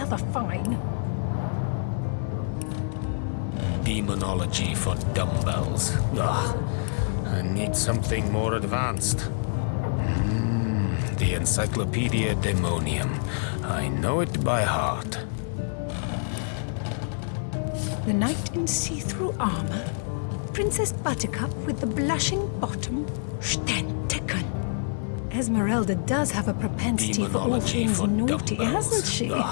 fine. Demonology for dumbbells. Ugh. I need something more advanced. The Encyclopedia Demonium. I know it by heart. The knight in see-through armor. Princess Buttercup with the blushing bottom. Stentiken. Esmeralda does have a propensity for all things naughty, hasn't she?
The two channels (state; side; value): silent; right; 59 dB below the other